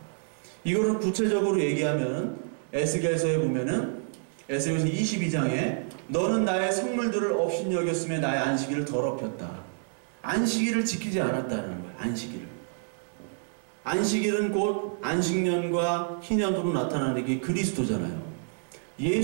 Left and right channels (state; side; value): silent; left; 59 dB below the other